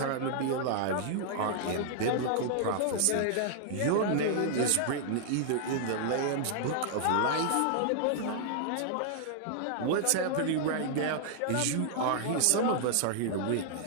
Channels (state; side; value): different; both; correlation -0.01